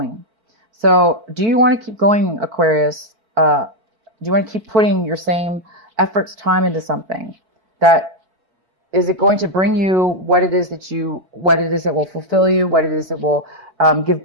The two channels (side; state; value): left; late; 4.5 ms